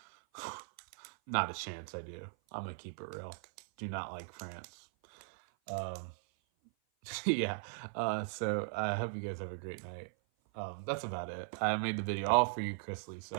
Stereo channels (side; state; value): left; silent; 52 dB below the other